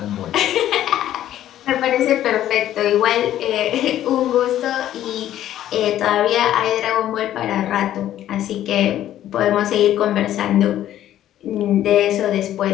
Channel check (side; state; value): right; quieter; 12.3 dB